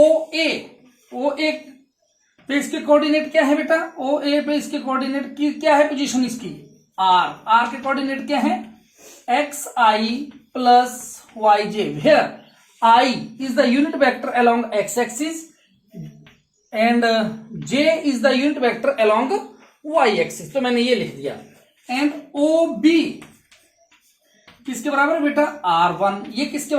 ए पे इसके कोऑर्डिनेट क्या है बेटा, ओ ए पे इसके कोऑर्डिनेट की क्या है, पोजीशन इसकी आर के कोऑर्डिनेट क्या है, x i plus y j, where i is the unit vector along x axis and j is the unit vector along y axis. तो मैंने ये लिख दिया। एंड ओ बी किसके बराबर है बेटा, R1, ये किसके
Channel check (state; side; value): identical; both; correlation 1.00